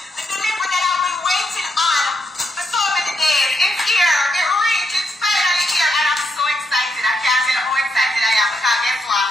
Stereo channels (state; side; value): normal; both; correlation 0.79